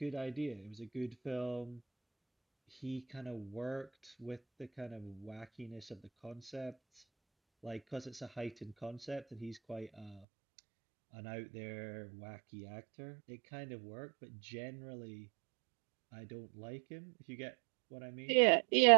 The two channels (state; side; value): drops out; left; at 10.2 s